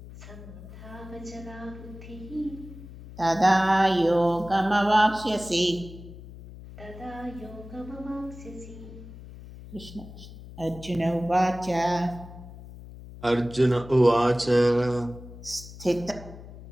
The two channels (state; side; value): noise; left; hum, 15 dB below the sound